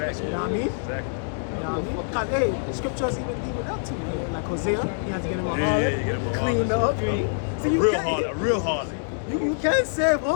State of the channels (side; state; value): right; silent; digital silence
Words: You know what I mean? Exactly. You know what I mean? Because, hey, the scriptures even deal with that too. Man. Like Hosea, he has to get him a Yeah, harlot, get him a clean her up. A So you real can't, harlot, a real harlot. you can't save